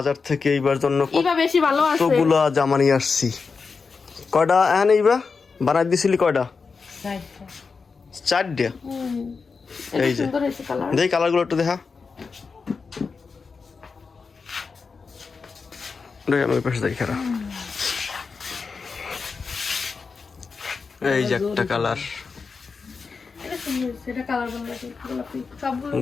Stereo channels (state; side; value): quieter; right; 4.9 dB